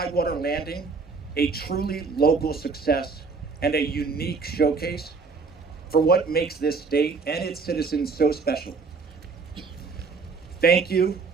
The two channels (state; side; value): quieter; left; 4.6 dB